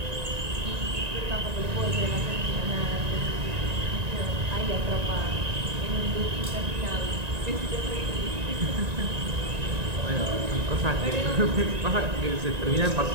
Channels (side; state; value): left; late; 1.9 ms